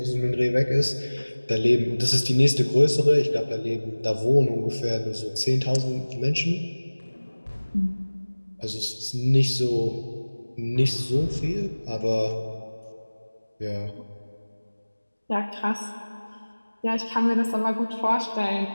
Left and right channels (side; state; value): both; inverted; correlation -1.00